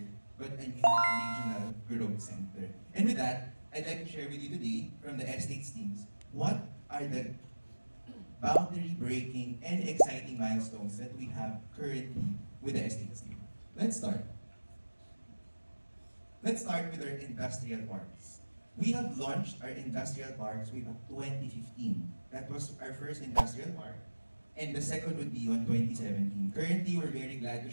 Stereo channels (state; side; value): inverted; both; correlation -1.00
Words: but a new regional growth center. And with that, I'd like to share with you today from the estates teams what are the boundary breaking and exciting milestones that we have currently with the estates team. Let's start. Let's start with our industrial parks. We have launched our industrial parks way back 2015. That was our first industrial park. And the second would be on 2017. Currently, we're very glad to